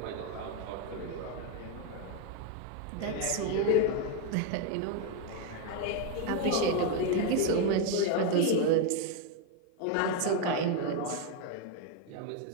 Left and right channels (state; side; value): different; both; correlation 0.01